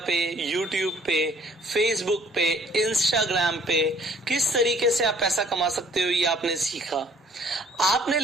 पे, यूट्यूब पे, फेसबुक पे, इंस्टाग्राम पे किस तरीके से आप पैसा कमा सकते हो ये आपने सीखा. आपने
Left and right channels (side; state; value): both; normal; correlation 0.58